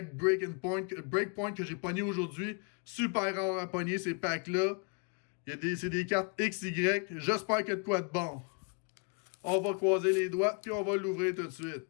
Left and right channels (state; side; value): quieter; right; 36.1 dB